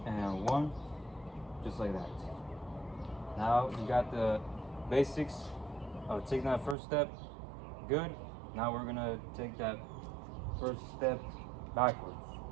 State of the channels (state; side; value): drops out; left; at 6.8 s